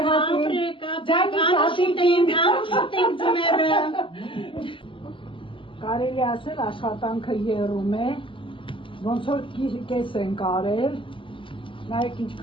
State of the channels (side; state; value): right; late; 0.25 ms